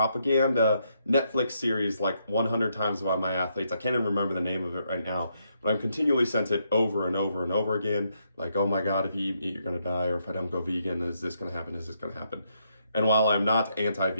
Netflix series like 100 times by my athletes. I can't even remember the name of it right now, but I'm continually sent it over and over and over again. Like, oh my God, if you eat meat, you're gonna die, or if I don't go vegan, is this gonna happen? Is this gonna happen? And while I'm not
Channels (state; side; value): inverted; both; correlation -0.77